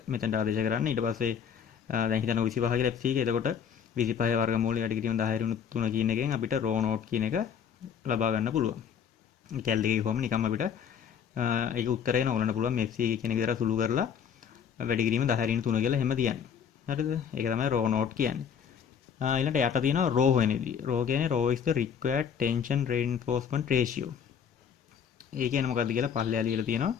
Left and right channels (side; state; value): right; quieter; 7.7 dB